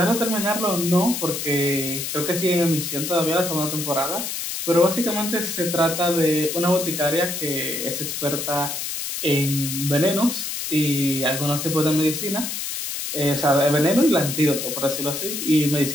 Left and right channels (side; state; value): left; noise; hiss, 4 dB below the sound